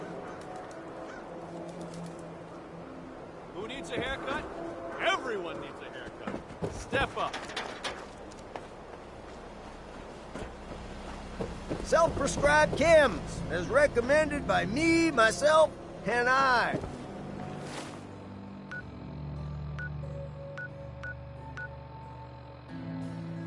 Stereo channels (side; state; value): both; identical; correlation 1.00